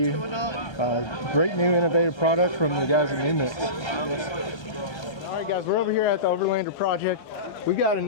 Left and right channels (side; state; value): right; late; 1.3 ms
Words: Great new innovative product from the guys at New Mix. All right, guys, we're over here at the Overlander project. we got